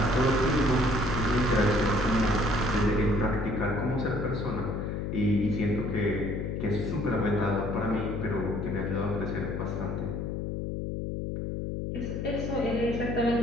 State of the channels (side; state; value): left; noise; hum, 3 dB below the sound